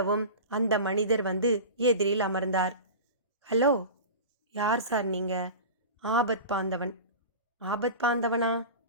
அந்த மனிதர் வந்து எதிரில் அமர்ந்தார். ஹலோ, யார் சார் நீங்க? ஆபத் பாந்தவன். ஆபத் பாந்தவனா?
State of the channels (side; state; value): both; inverted; correlation -0.31